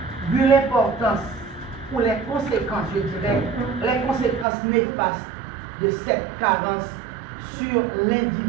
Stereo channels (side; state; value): left; drops out; at 4.5 s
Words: vu l'importance ou les conséquences, je dirais, les conséquences néfastes de cette carence sur